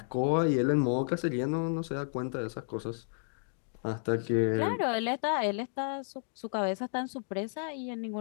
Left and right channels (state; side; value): silent; right; digital silence